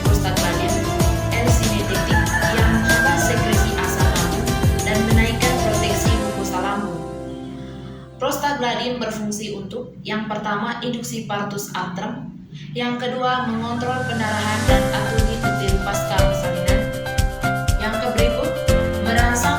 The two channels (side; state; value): both; identical; correlation 1.00